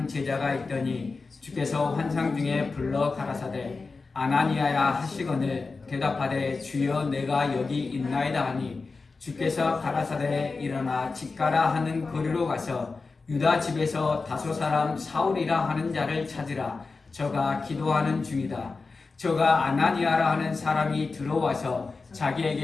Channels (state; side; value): quieter; right; 4.1 dB